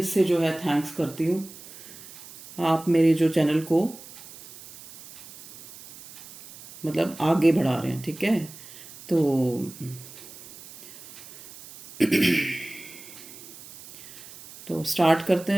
से जो है थैंक्स करती हूँ। आप मेरे जो चैनल को मतलब आगे बढ़ा रहे हैं, ठीक है। तो स्टार्ट करते हैं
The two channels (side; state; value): right; noise; hiss, 17 dB below the sound